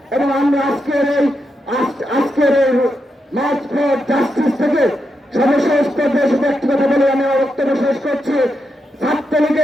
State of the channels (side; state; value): both; normal; correlation 0.84